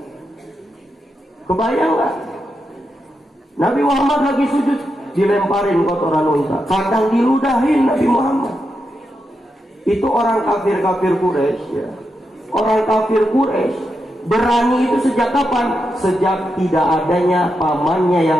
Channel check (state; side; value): normal; both; correlation 0.86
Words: Nabi Muhammad lagi sujud dilemparin kotoran unta. Kadang diludahin Nabi Muhammad. Itu orang kafir Quraisy, Orang kafir Quraisy berani itu sejak kapan? Sejak tidak adanya pamannya